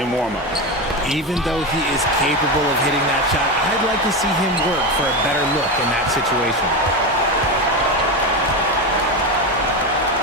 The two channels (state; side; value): normal; both; correlation 0.17